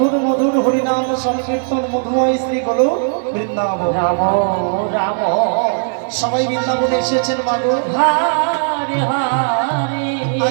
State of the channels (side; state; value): left; silent; digital silence